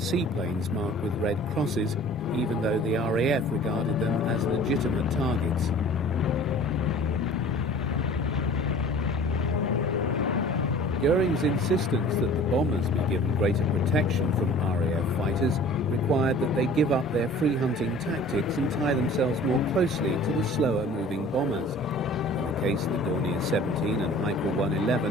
marked with red crosses, even though the RAF regarded them as legitimate targets. Goering's insistence that the bombers be given greater protection from RAF fighters required that they give up their free hunting tactics and tie themselves more closely to the slower moving bombers. In the case of the Dornier 17 and Heinkel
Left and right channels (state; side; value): normal; both; correlation 0.46